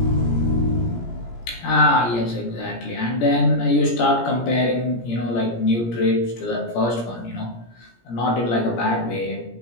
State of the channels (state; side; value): late; right; 17 ms